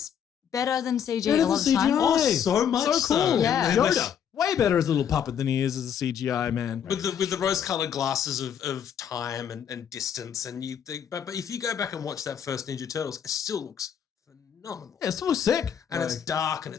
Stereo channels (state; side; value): quieter; right; 8.5 dB